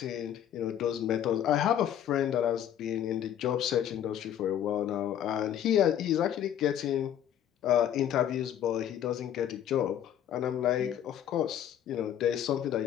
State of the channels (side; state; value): right; quieter; 10.3 dB